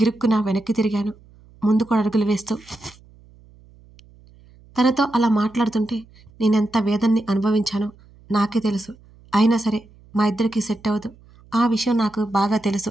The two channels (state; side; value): noise; right; hum, 26 dB below the sound